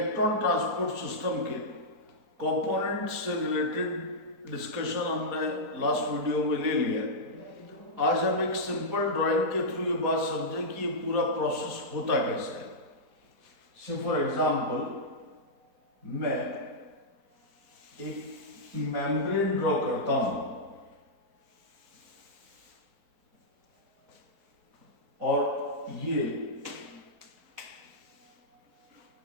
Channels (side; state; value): left; late; 4.2 ms